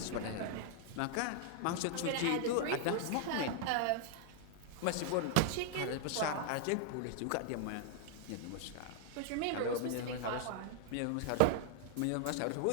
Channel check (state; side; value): different; both; correlation 0.00